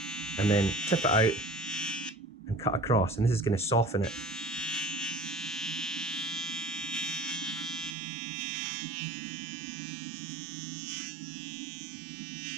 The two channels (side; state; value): left; drops out; at 8.0 s